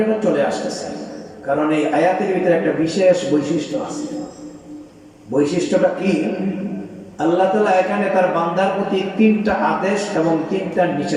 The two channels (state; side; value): identical; both; correlation 1.00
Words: এটা চলে আসতেছে। কারণ এই আয়াতের ভিতরে একটা বিশেষ বৈশিষ্ট্য আছে। বৈশিষ্ট্যটা কি? আল্লাহ তাআলা এখানে তার বান্দার প্রতি 3টা আদেশ এবং 3টা